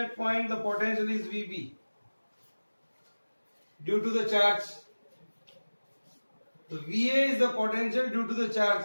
point the potential is VB due to the charge. So VA is the potential due to the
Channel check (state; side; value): inverted; both; correlation -1.00